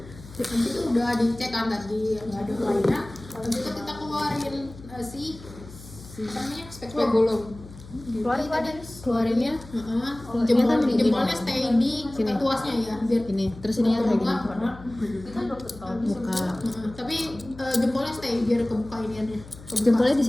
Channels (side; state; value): left; noise; hum, 17 dB below the sound